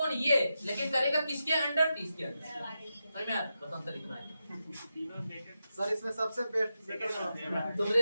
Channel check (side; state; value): both; inverted; correlation -0.88